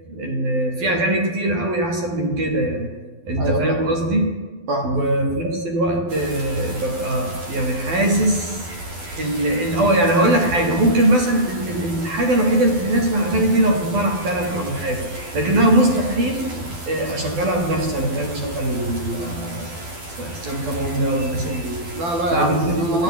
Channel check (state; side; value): late; left; 12 ms